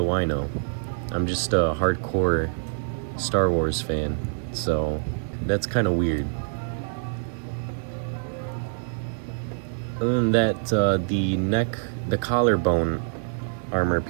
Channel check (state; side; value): silent; left; digital silence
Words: I know? I'm just a hardcore Star Wars fan, so that's kind of weird. Other than that, the collarbone armor